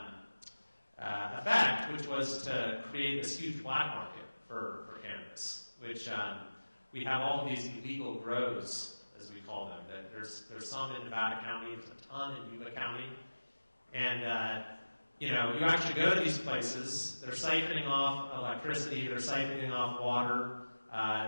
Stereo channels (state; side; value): inverted; both; correlation -1.00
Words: effect, which was to create this huge black market for cannabis, which we have all these illegal grows, as we call them. There's some in Nevada County, there's a ton in Yuba County, and you actually go to these places, they're siphoning off electricity, they're siphoning off water,